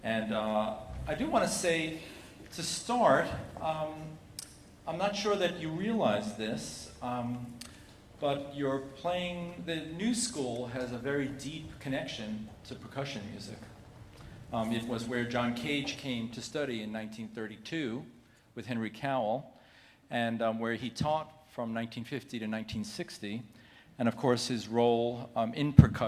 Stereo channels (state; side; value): identical; both; correlation 1.00